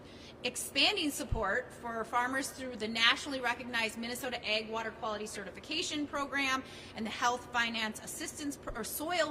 expanding support for farmers through the nationally recognized Minnesota Ag Water Quality Certification Program and the Health Finance Assistance or Soil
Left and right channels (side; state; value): both; identical; correlation 1.00